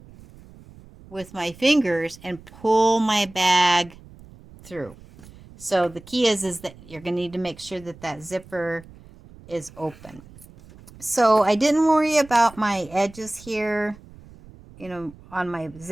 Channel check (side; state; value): right; noise; rumble, 21 dB below the sound